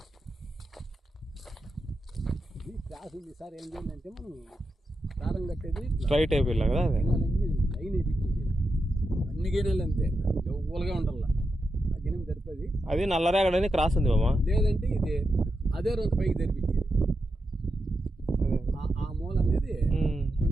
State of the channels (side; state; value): both; normal; correlation 0.87